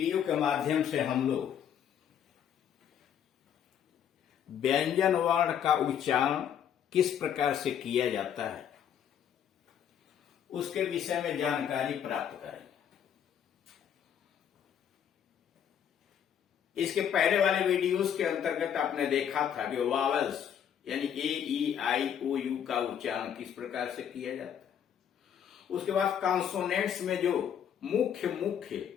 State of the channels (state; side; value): quieter; right; 8.9 dB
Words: के माध्यम से हम लोग व्यंजन वर्ण का उच्चारण किस प्रकार से किया जाता है उसके विषय में जानकारी प्राप्त करेंगे। इसके पहले वाले वीडियोस के अंतर्गत आपने देखा था कि वावल्स यानी ए ई आई ओ यू का उच्चारण किस प्रकार से किया जाता है। उसके बाद कॉन्सोनेंट्स में जो मुख्य